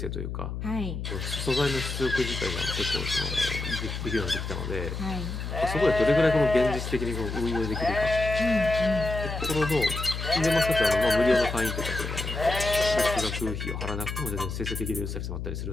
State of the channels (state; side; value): noise; left; hum, 5 dB below the sound